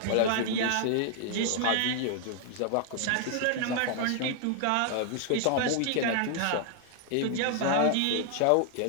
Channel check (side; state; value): both; different; correlation 0.00